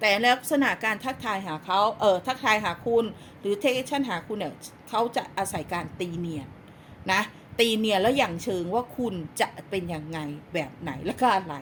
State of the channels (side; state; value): both; identical; correlation 1.00